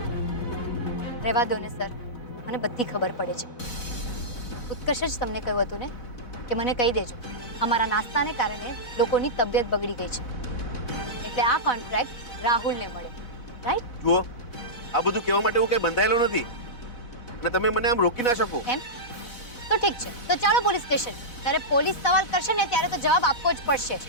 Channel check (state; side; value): late; right; 4.1 ms